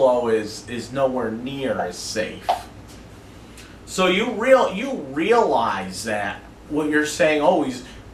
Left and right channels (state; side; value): identical; both; correlation 1.00